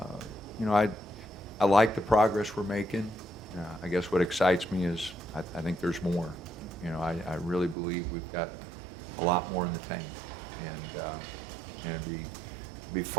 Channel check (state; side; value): drops out; left; at 7.8 s